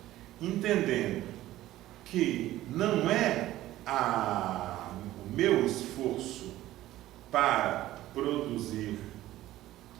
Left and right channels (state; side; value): quieter; left; 15.1 dB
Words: entendendo que não é o meu esforço para produzir